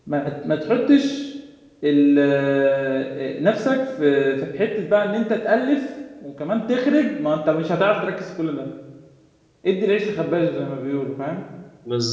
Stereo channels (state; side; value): identical; both; correlation 1.00